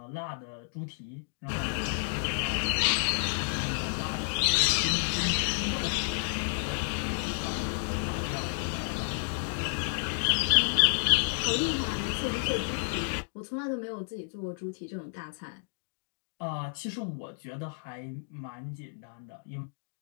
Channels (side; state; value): right; silent; digital silence